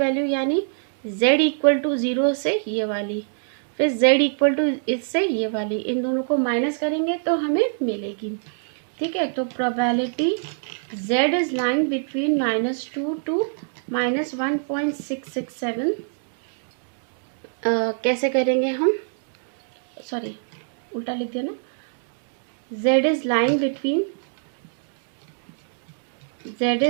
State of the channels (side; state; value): left; silent; digital silence